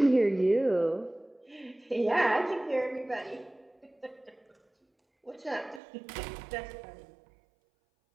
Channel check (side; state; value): left; drops out; at 5.8 s